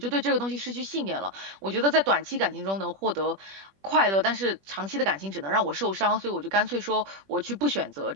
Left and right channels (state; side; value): late; left; 21 ms